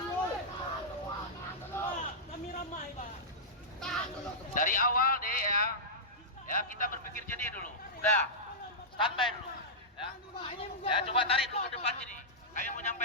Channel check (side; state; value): both; normal; correlation -0.13